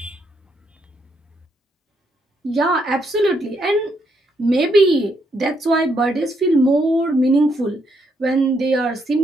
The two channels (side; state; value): both; normal; correlation 0.75